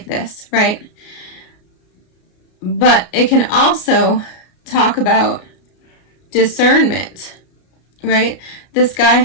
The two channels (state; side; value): late; right; 33 ms